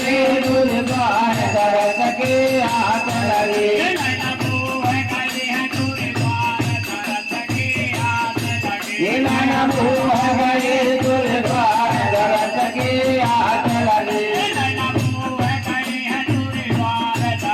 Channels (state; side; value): identical; both; correlation 1.00